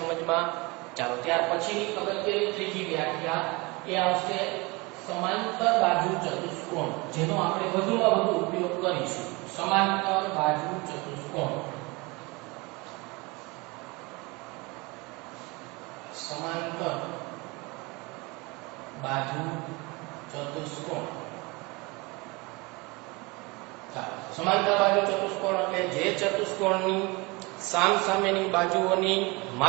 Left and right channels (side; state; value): left; quieter; 25.6 dB